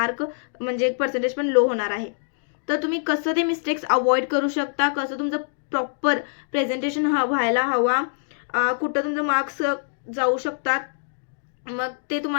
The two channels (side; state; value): right; silent; digital silence